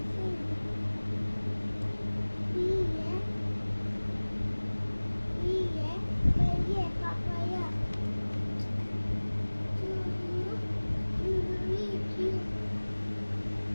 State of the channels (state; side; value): inverted; both; correlation -1.00